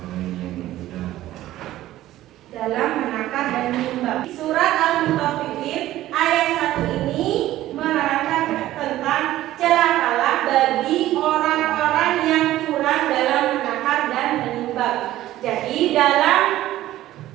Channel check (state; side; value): quieter; left; 14.6 dB